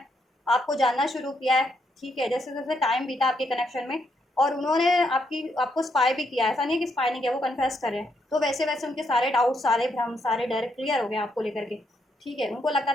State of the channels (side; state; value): both; normal; correlation 0.77